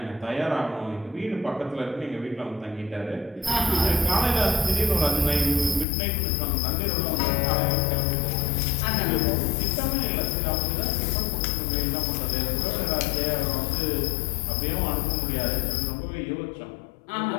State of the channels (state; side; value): drops out; right; at 5.9 s